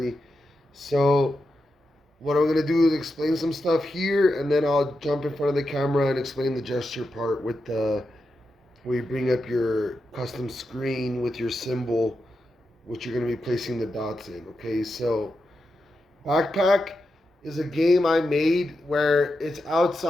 So what I'm gonna do is explain some stuff here, and then I'll jump in front of the camera and explain the gesture part with the where you bring up your custom screen with your symbol, which you're going to be placing the dots in. Okay, so Backpack is a game I made where it's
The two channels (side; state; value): both; normal; correlation 0.88